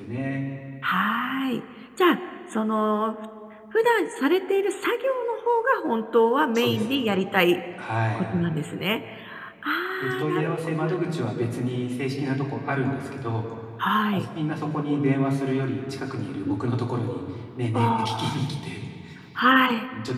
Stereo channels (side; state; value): both; identical; correlation 1.00